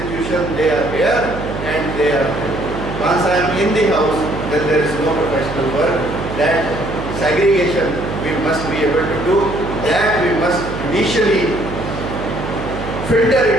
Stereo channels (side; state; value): right; noise; hum, 8 dB below the sound